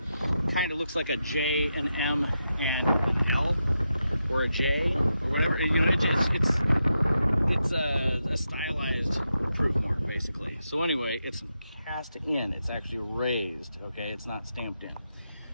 Kind of looks like a J, an M, and an L, or a J, or whatever. You know, it's a stylized proof mark, basically. So anyway, it's cast in. It's actually raised. Okay, it's not stamped in.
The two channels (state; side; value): inverted; both; correlation -0.86